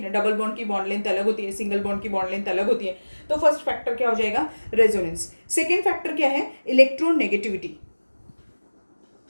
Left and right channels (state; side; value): inverted; both; correlation -1.00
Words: डबल बॉन्ड की बॉन्ड लेंथ अलग होती है, सिंगल बॉन्ड की बॉन्ड लेंथ अलग होती है। तो फर्स्ट फैक्टर क्या हो जाएगा, रेजोनेंस। सेकेंड फैक्टर क्या है, इलेक्ट्रोनेगेटिविटी।